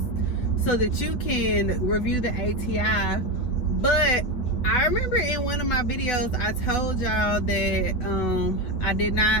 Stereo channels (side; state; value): right; late; 8.2 ms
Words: so that you can review the ATI. But I remember in one of my videos I told y'all that I did